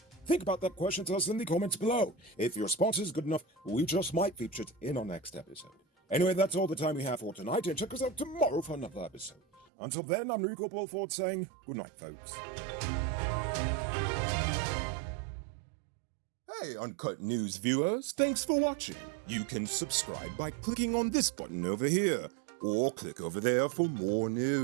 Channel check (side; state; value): left; drops out; at 9.7 s